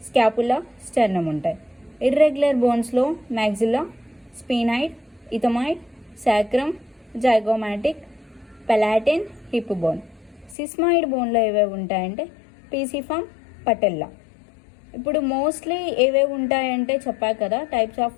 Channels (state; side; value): drops out; right; at 10.6 s